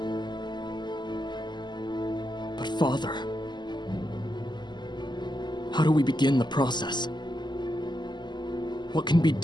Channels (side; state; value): right; late; 0.21 ms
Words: But Father, how do we begin the process? What can be